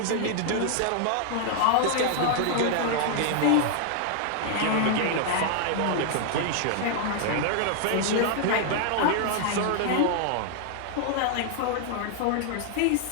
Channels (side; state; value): both; different; correlation 0.00